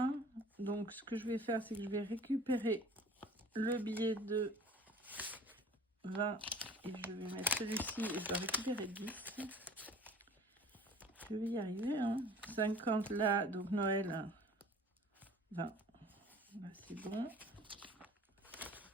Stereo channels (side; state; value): both; normal; correlation 0.46